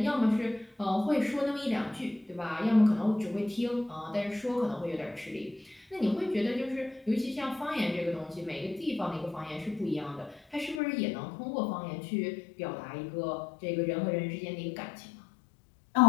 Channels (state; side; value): drops out; right; at 10.8 s